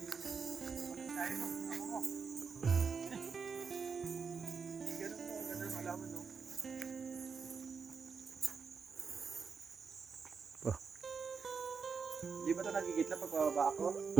Kaya mo, ako mo. Ganun mo, ganun malaman, no? Di ba ito nagigitla pag bababa ako?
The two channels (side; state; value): left; quieter; 5.6 dB